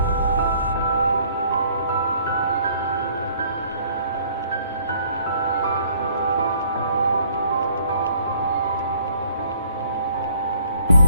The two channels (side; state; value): both; inverted; correlation -0.59